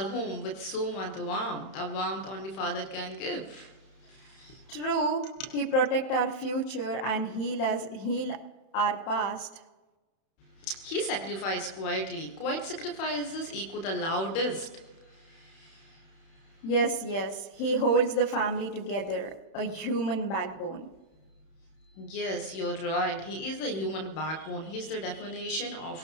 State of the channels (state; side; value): late; right; 31 ms